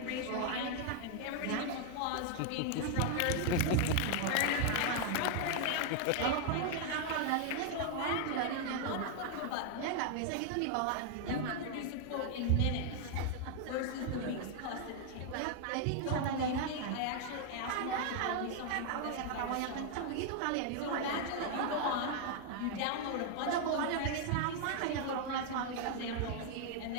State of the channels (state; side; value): different; both; correlation 0.00